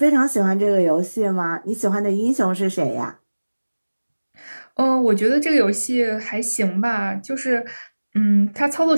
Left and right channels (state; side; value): inverted; both; correlation -1.00